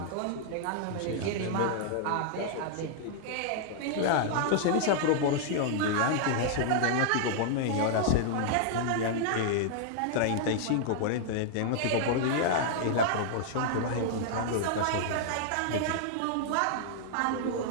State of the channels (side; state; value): both; different; correlation -0.01